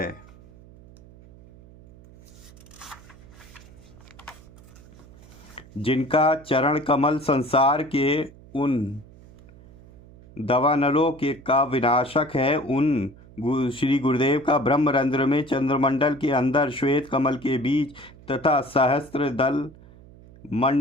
जिनका चरण कमल संसार के उन दवानलों के का विनाशक है, उन श्री गुरुदेव का ब्रह्मरंध्र में चंद्रमंडल के अंदर श्वेत कमल के बीच तथा सहस्त्र दल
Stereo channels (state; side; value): noise; right; hum, 22 dB below the sound